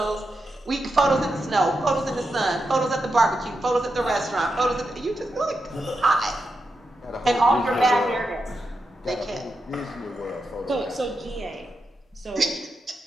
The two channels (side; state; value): both; normal; correlation 0.87